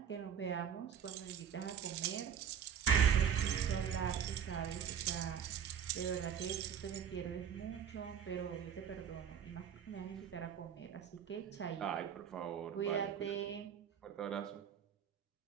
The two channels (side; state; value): left; quieter; 8.2 dB